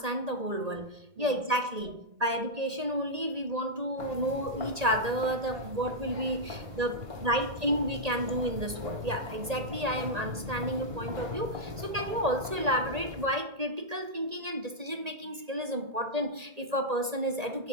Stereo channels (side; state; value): left; late; 1.8 ms